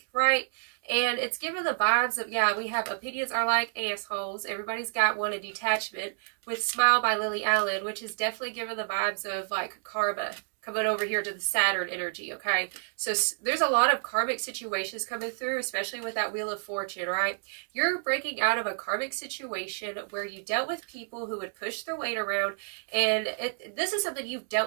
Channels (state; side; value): silent; left; digital silence